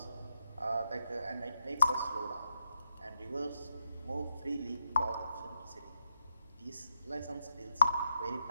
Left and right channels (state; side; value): inverted; both; correlation -0.83